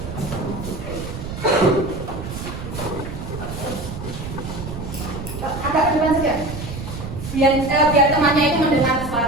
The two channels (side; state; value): right; noise; rumble, 9 dB below the sound